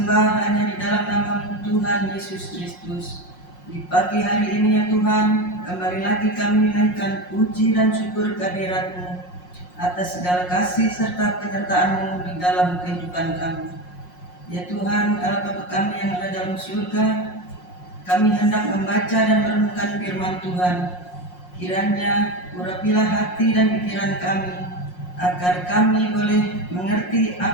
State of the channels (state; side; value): late; right; 5.6 ms